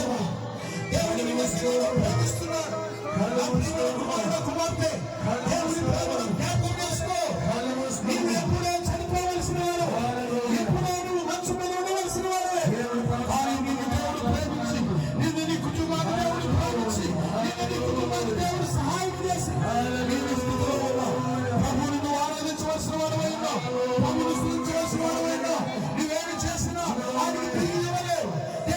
దేవుడు నీ మీద ప్రేమిస్తున్నాడు. నా ప్రియమైన కుమారుడు, కుమార్తె, దేవుని ప్రేమను జ్ఞాపకం చేసుకో. నీవు ఎప్పుడో చనిపోవలసిన వాడు, ఎప్పుడో నువ్వు మంచు మీద ఉండవలసిన వాడే. కానీ నిన్ను దేవుడు ప్రేమించి, నిన్ను నీ కుటుంబాన్ని దేవుడు ప్రేమించి, నిన్ను నీ కుటుంబాన్ని దేవుడు సహాయం చేసి నీవు స్థితిలో ఉన్నావు. ప్రభువుని నువ్వు ఆరాధించవలసిన వాడవైనా, ప్రభువుని స్తుతించవలసిన వాడవైనా, నువ్వేమి చేసినా ఆయనకి తిరిగి ఇవ్వలేవు.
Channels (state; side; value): identical; both; correlation 1.00